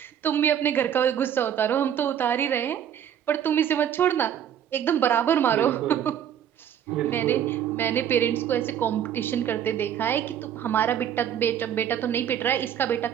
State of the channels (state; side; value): quieter; left; 9.6 dB